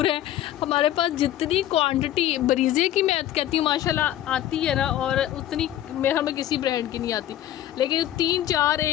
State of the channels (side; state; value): right; quieter; 12.6 dB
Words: है। हमारे पास जितनी क्वांटिटी ब्रीज़े की मैं कहती हूँ माशाल्लाह आती है ना, और उतनी मेरा में किसी ब्रांड की नहीं आती, लेकिन 3-4